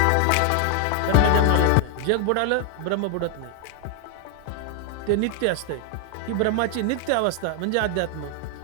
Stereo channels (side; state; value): both; different; correlation 0.00